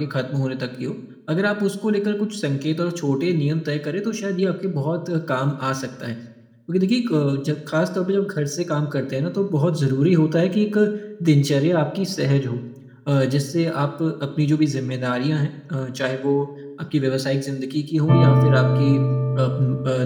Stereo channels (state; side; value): identical; both; correlation 1.00